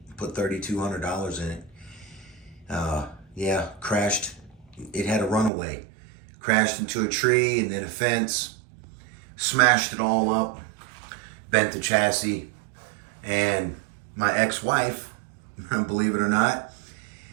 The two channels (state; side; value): drops out; left; at 5.5 s